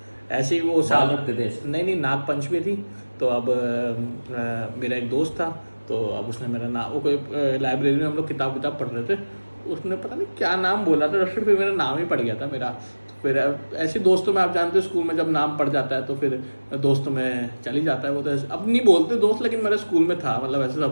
ऐसे ही। वो बाल रखते थे ऐसे? नहीं नाग पंचमी थी तो अब मेरा एक दोस्त था तो अब उसने मेरा नाम, वो कोई लाइब्रेरी में हम लोग किताब पढ़ रहे थे, उसने पता नहीं क्या नाम बोला था, फिर मेरा नाम ही पड़ गया था मेरा। फिर ऐसे दोस्तों में आप जानते हो स्कूल में जब नाम पड़ जाता है तो फिर दोस्तों में चल ही जाता है वो। तो अब नहीं बोलते दोस्त, लेकिन मेरे स्कूल में था, मतलब ऐसे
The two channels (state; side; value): inverted; both; correlation -1.00